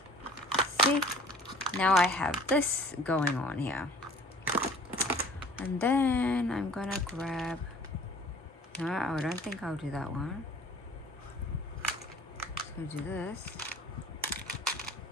See? Now I have this going on here. And then I'm gonna grab, no, I don't think I'll do that one. So do this.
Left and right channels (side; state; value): both; normal; correlation 0.50